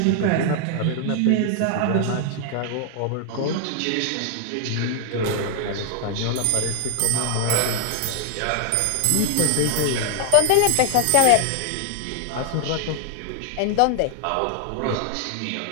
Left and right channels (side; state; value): both; different; correlation 0.00